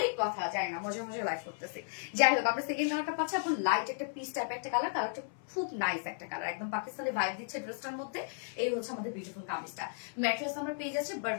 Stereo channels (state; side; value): silent; right; 55 dB below the other